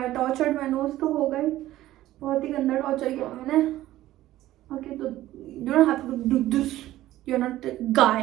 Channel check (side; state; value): left; quieter; 14.9 dB